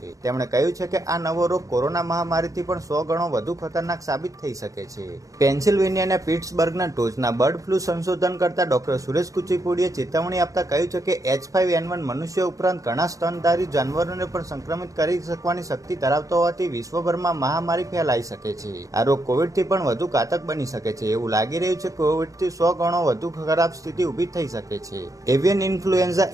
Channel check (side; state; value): left; late; 0.16 ms